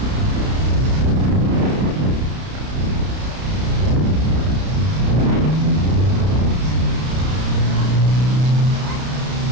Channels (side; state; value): left; late; 32 ms